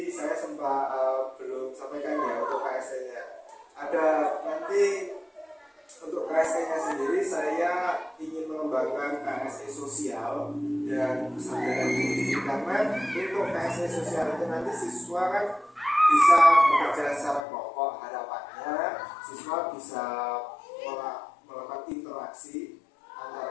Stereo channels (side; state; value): right; drops out; at 17.4 s